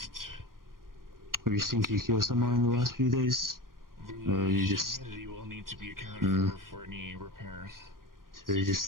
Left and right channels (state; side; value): late; left; 0.91 ms